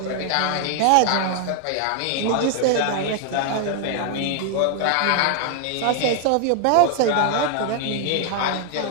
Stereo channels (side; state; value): both; different; correlation 0.00